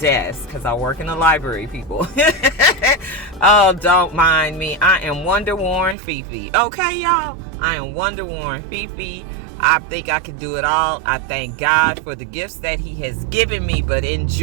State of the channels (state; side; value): drops out; left; at 6.0 s